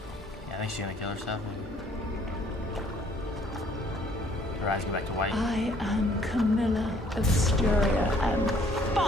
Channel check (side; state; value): both; normal; correlation 0.61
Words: Yeah, I think she's gonna kill herself. Her eyes go back to white. I am Carmilla of Styria, and